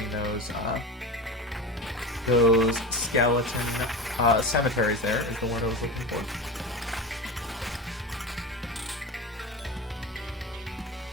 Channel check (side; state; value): both; normal; correlation 0.26